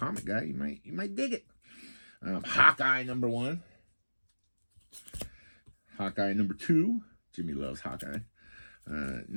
guy, you might dig it. Hawkeye number 1. Hawkeye number 2. Jimmy loves Hawkeye.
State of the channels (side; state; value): both; inverted; correlation -1.00